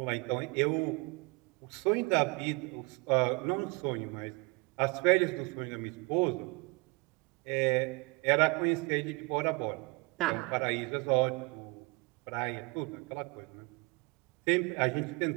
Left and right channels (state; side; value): quieter; left; 28.5 dB